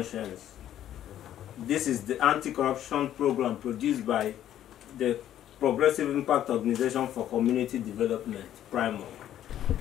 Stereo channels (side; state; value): right; quieter; 11.5 dB